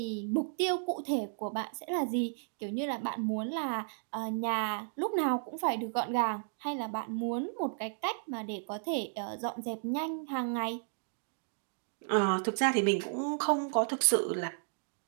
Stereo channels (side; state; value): left; silent; digital silence